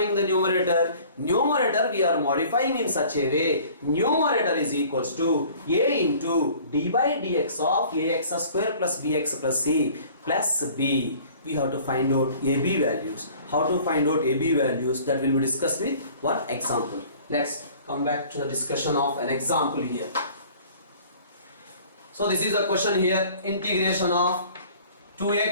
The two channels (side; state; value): both; inverted; correlation -0.50